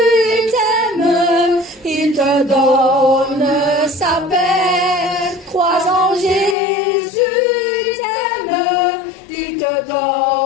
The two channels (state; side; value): drops out; right; at 6.6 s